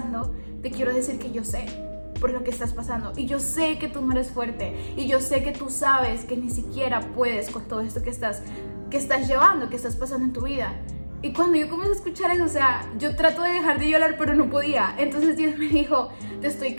te quiero decir que yo sé por lo que estás pasando. Y yo sé que tú no eres fuerte. Y yo sé que tú sabes que ni siquiera puedes con todo esto que estás llevando, que estás pasando en tu vida. Y cuando yo comencé a escuchar eso, o sea, yo trato de dejar de llorar, pero no podía. Entonces Dios me dijo, te estoy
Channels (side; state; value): both; inverted; correlation -1.00